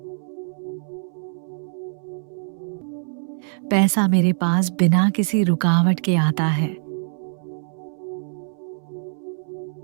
पैसा मेरे पास बिना किसी रुकावट के आता है।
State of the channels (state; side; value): silent; left; 63 dB below the other